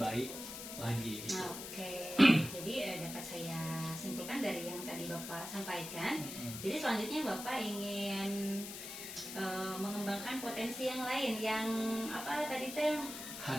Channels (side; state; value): left; noise; hiss, 9 dB below the sound